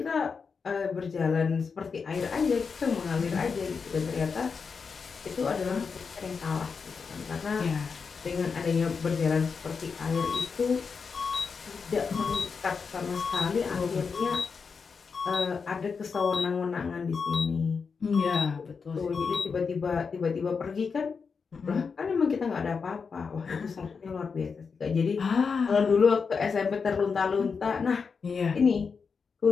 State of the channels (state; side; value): quieter; right; 5.5 dB